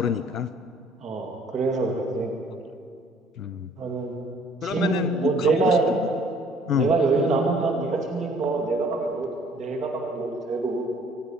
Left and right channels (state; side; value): normal; both; correlation 0.58